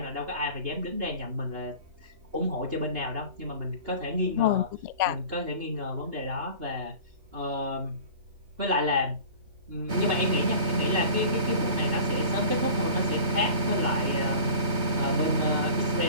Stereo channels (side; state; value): left; late; 3.2 ms